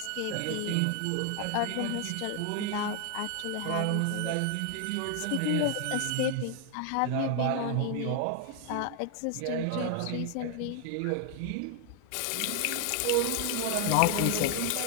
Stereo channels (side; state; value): both; different; correlation 0.00